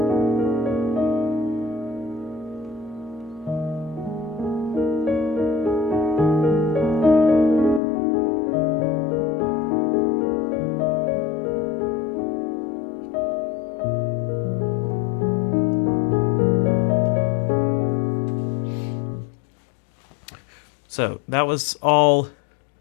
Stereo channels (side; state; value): right; drops out; at 7.8 s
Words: So that was all